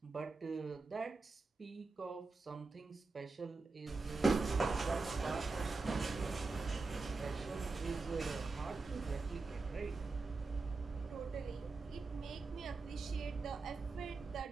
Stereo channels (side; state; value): left; quieter; 3.9 dB